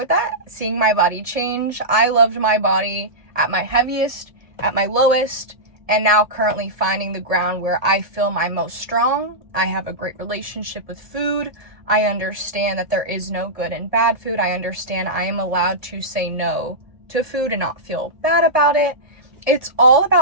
that, seeing my body change. I loved my body at my heaviest, at my lowest, and now currently finding the ground where I feel my most strong. I have a great relationship with food. I understand that there is no good and bad food. I understand I am allowed to say no to food and not feel bad about it. It's all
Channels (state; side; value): late; left; 1.7 ms